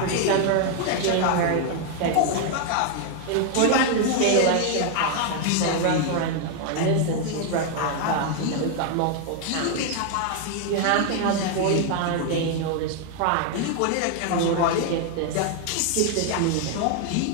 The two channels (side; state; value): both; different; correlation 0.00